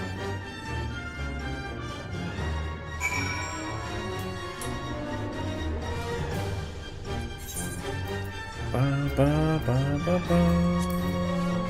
Ba, ba, ba, ba, ba.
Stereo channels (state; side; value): identical; both; correlation 1.00